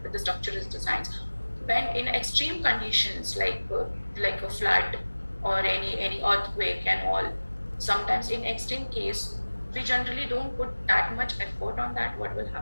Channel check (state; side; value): inverted; both; correlation -1.00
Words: the structure is designed. When in extreme conditions like a flood or any earthquake and all, sometimes in extreme case we generally don't put that much effort on that. What will